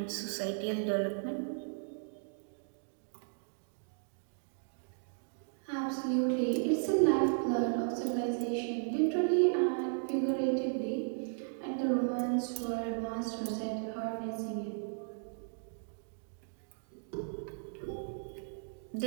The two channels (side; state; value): left; silent; digital silence